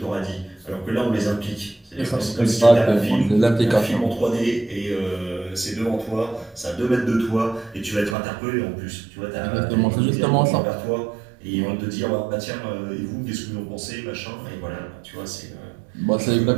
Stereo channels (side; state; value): left; drops out; at 8.2 s